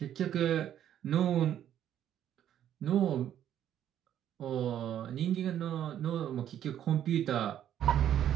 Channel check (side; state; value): left; quieter; 10.7 dB